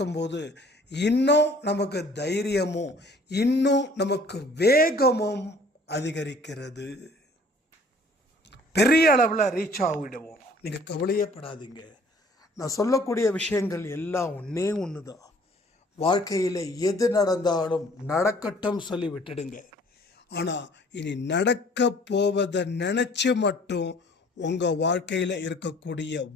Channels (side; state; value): both; normal; correlation 0.54